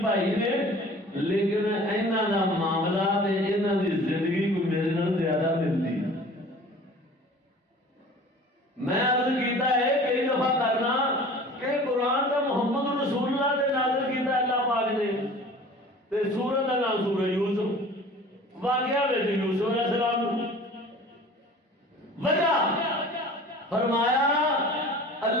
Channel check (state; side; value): normal; both; correlation 0.44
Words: بھائی نے لیکن انہاں دا معاملہ تے انہاں دی زندگی کو میرے نال زیادہ ملتی میں عرض کیتا ہے کئی دفعہ کرنا کہ قرآن کا محمد رسول اللہ نے نازل کیتا اللہ پاک نے تے سورۃ دا نام سورہ یوسف واقعہ وچ یوسف علیہ السلام وجہ فرمایا